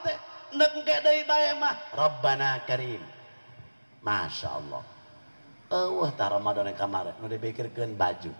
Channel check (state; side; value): inverted; both; correlation -1.00